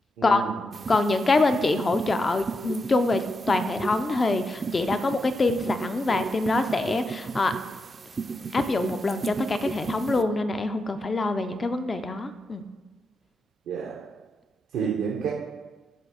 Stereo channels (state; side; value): normal; both; correlation 0.85